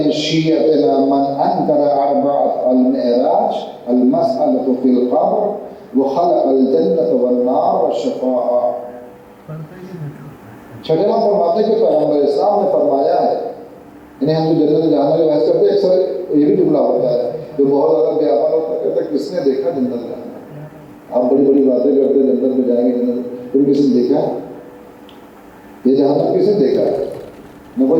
شیعتنا من انکر اربعۃ المعراج المسألۃ فی القبر وخلق الجنۃ والنار والشفاعہ. چھٹے ماہ فرماتے کہ پیغمبر اسلام نے فرمایا ہے، یعنی ہم جو جنت جانے میں بحث کرتے ہیں اکثر یہ بھی جملہ ہوتا ہے جو بہت زیادہ بے عمل ہوتا ہے، کہتا ہے کس نے دیکھا جنت جانا؟ آپ بڑی بڑی باتیں کرتے ہیں جنت میں جائیں گے، جنت کوئی کسی نے دیکھا؟ یہ جہنم کسی نے دیکھا ہے؟ نہ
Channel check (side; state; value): both; identical; correlation 1.00